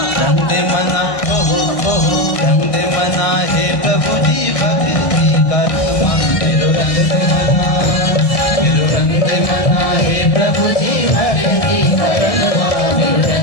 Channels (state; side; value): late; right; 1.7 ms